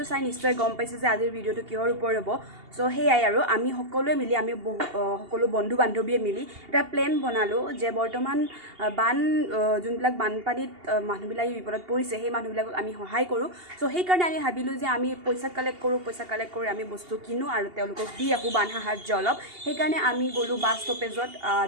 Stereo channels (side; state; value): left; late; 2.8 ms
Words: চাই নিশ্চয় গম পাইছে যে আজিৰ ভিডিঅ'টো কিহৰ ওপৰত হ'ব সো হেয়াই আৰু আমি সকলোৱে মিলি সকলো বন্ধু বান্ধৱীয়ে মিলি এটা প্লেন বনালো যে বৰ্তমান যোনবিলাক বানপানীত মানুহবিলাক বিপদত পৰিছে সেই মানুহবিলাকক আমি সহায় কৰোঁ সো সেইকাৰণে আমি ভাবিলোঁ যে আমি পইচা কালেক্ট কৰি আমি বস্তু কিনো আৰু তেওঁলোকক দি আহোঁ বান সাহাৰ্য অলপ সেইকাৰণে আমি গ'লোঁ বাছ ষ্টপেজত